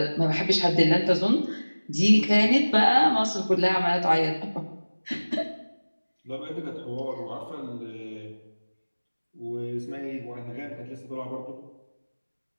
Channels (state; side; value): inverted; both; correlation -1.00